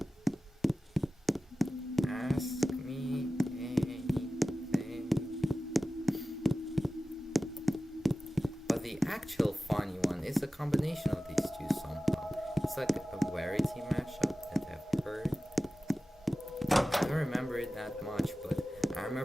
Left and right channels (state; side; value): normal; both; correlation 0.95